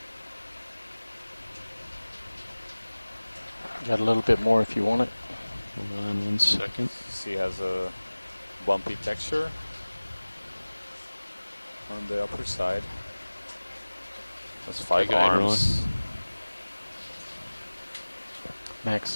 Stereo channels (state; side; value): inverted; both; correlation -1.00